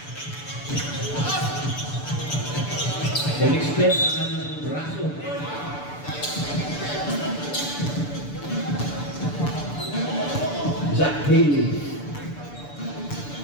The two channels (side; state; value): right; late; 6.9 ms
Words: Extend ang kanyang braso. Zach Haley.